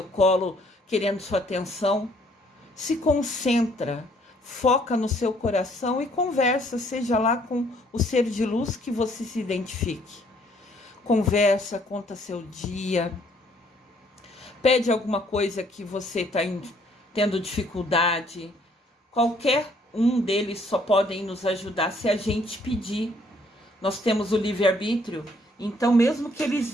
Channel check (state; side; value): normal; both; correlation 0.64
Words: colo, querendo sua atenção. Se concentra, foca no seu coração e conversa, seja lá com o ser de luz que você se identifique. Conversa, conta seu dia, pede alguma coisa que você está tendo dificuldade. Qualquer um deles só podem nos ajudar se a gente pedir. Nós temos o livre-arbítrio, então mesmo que eles